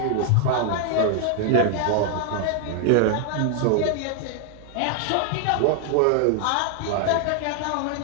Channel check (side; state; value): both; different; correlation 0.00